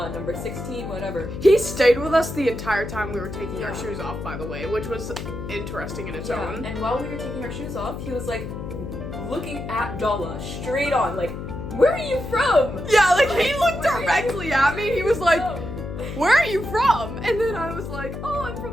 16, whatever. He stayed with us the entire time we were taking our Yeah. shoes off, by the way, which was interesting in its own. And while we were taking our shoes off, he was like looking at Dalla straight on, like, where are you from? Yeah, like he looked Where are you directly at me. He was like, from? where are you from? And then I was like, oh, I'm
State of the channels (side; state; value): left; noise; hum, 7 dB below the sound